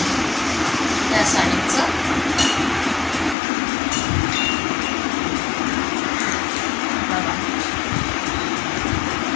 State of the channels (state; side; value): drops out; right; at 3.4 s